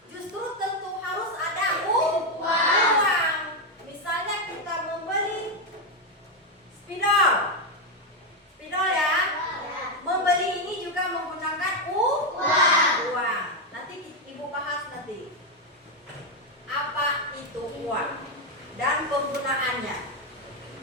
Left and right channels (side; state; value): both; normal; correlation 0.05